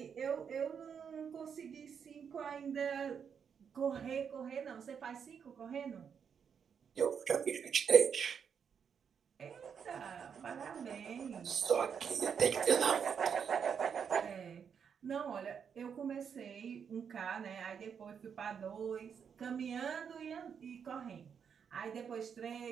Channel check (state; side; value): quieter; left; 7.1 dB